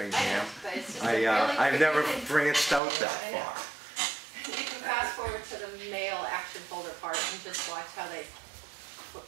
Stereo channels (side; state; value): left; drops out; at 2.8 s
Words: I've never branched out that far. You can fast forward to the mail action folder part and just watch how they,